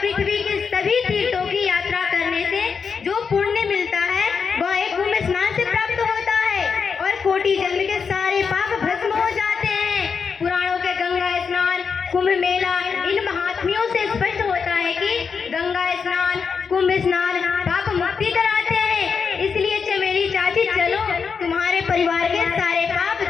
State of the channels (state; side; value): quieter; right; 5.8 dB